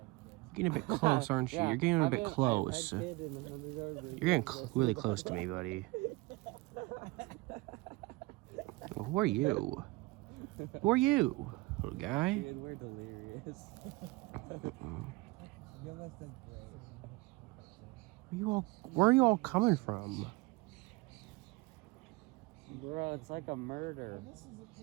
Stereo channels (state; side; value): quieter; left; 22.8 dB